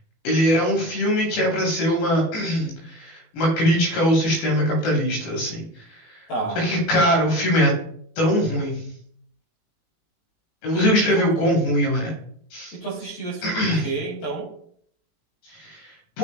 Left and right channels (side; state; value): right; late; 18 ms